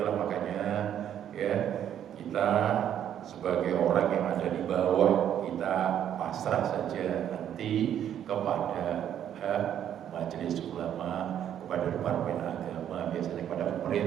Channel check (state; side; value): quieter; left; 10.0 dB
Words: makanya ya kita sebagai orang yang ada di bawah kita pasrah saja nanti kepada majelis ulama, kepada departemen agama, biasanya kepada